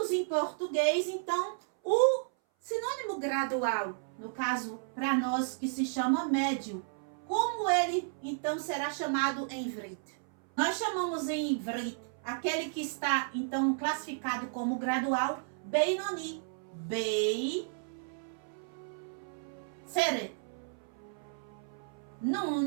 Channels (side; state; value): left; silent; 56 dB below the other